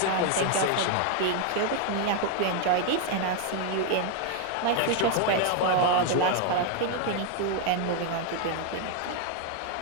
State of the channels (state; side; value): different; both; correlation 0.01